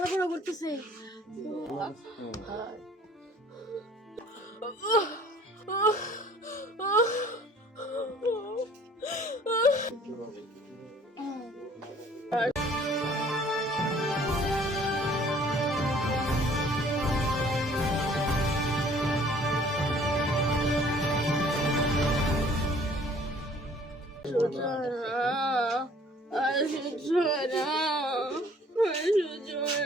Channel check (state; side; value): normal; both; correlation 0.55